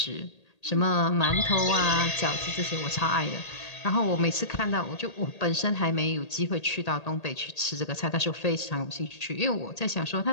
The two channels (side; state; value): right; late; 1.8 ms